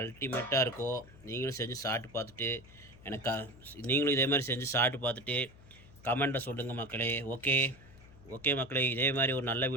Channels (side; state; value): left; noise; hum, 22 dB below the sound